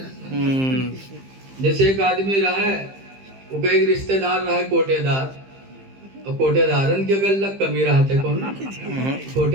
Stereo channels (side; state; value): left; late; 15 ms